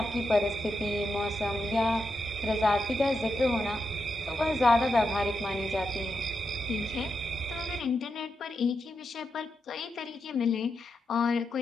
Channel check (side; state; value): both; normal; correlation 0.86